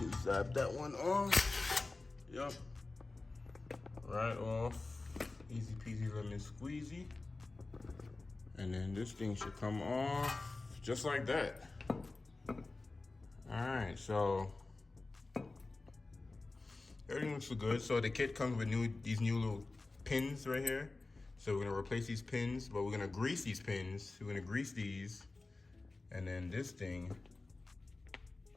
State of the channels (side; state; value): right; quieter; 3.4 dB